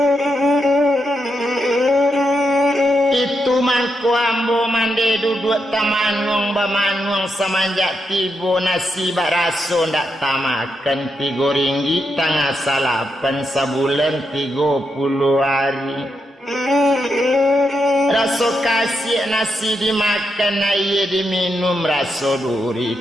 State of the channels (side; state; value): both; normal; correlation 0.83